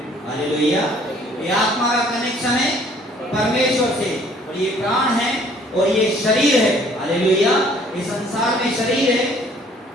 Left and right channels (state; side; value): normal; both; correlation 0.57